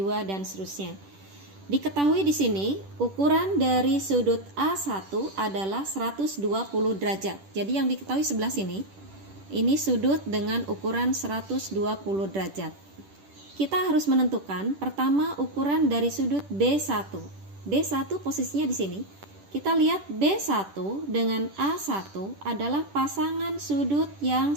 dan seterusnya. Diketahui di sini ukuran dari sudut A1 adalah 120 derajat. Jadi yang diketahui sebelah sini, ini sudut dengan ukuran 120 derajat. Kita harus menentukan pertama ukuran dari sudut B1. B1 posisinya di sini. Kita lihat B1 dengan A1 adalah pasangan sudut yang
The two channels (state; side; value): late; left; 10 ms